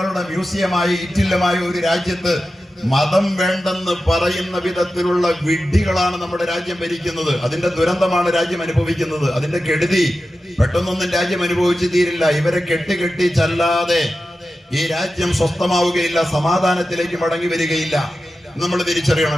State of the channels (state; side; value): normal; both; correlation 0.93